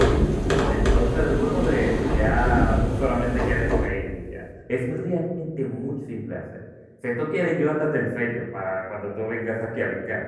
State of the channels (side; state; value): both; identical; correlation 1.00